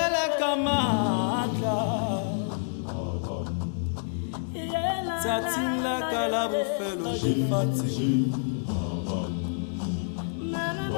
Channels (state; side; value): silent; right; digital silence